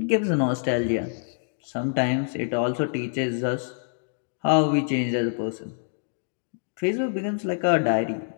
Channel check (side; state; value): right; silent; digital silence